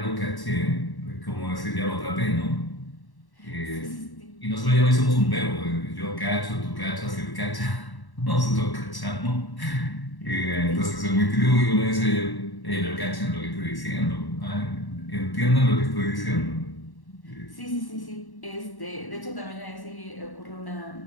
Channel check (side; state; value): right; late; 1.1 ms